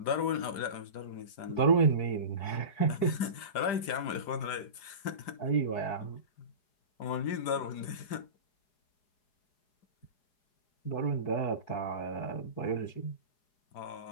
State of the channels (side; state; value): right; late; 5.0 ms